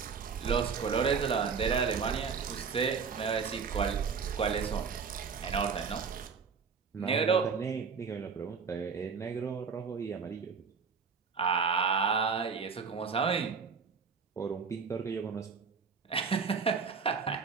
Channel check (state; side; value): quieter; left; 5.7 dB